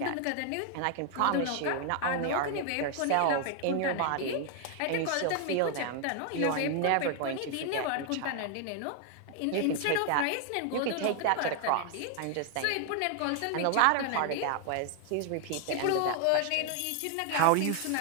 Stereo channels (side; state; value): both; different; correlation 0.00